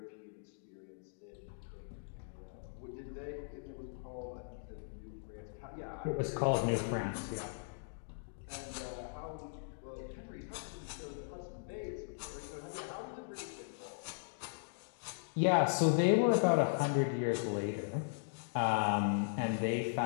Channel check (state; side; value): silent; right; digital silence